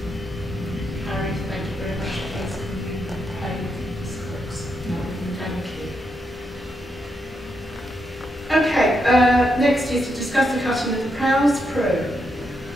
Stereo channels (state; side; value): normal; both; correlation 0.82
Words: Harry, thank you very much. Thank you. Okay, next is to discuss the cutting of the Prowse Pro.